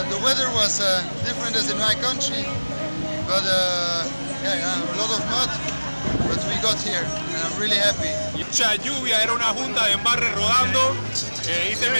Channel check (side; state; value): both; inverted; correlation -1.00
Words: weather was different as in my country, but a lot of mud, but we got here and I'm really happy. Mucha lluvia, era una junta de embarre rodando, hice